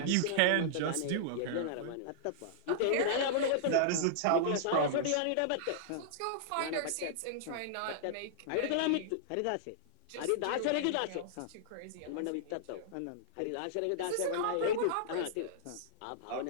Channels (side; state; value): both; different; correlation -0.02